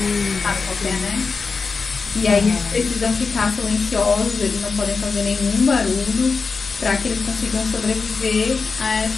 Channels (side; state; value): right; quieter; 4.7 dB